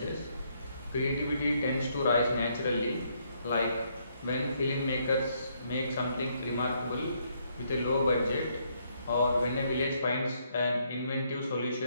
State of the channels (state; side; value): inverted; both; correlation -0.72